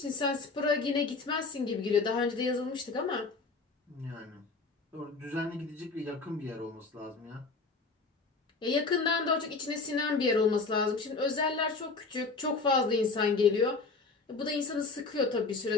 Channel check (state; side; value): quieter; right; 4.0 dB